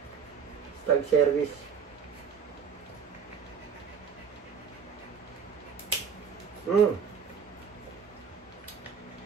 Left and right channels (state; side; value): quieter; left; 6.5 dB